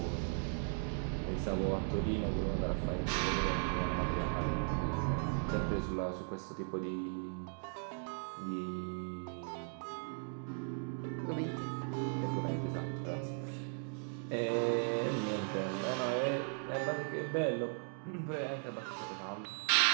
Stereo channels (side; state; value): left; silent; 53 dB below the other